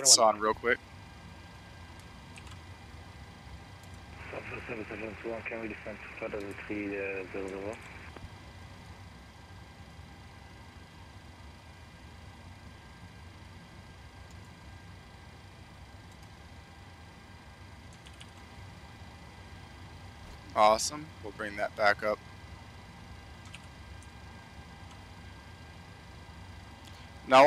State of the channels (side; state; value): both; identical; correlation 1.00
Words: 1021. on real quick. Southwest 771, can we descend to flight level 300? Awesome. We'll bring that back up. Now I